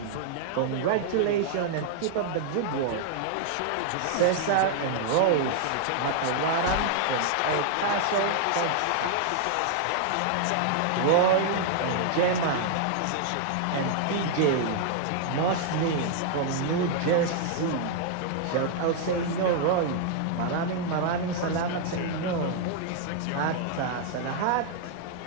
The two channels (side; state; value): both; different; correlation -0.01